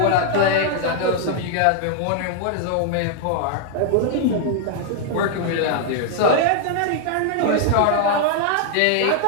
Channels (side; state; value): both; different; correlation -0.01